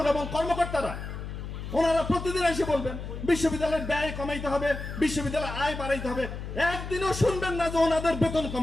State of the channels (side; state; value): left; noise; hum, 8 dB below the sound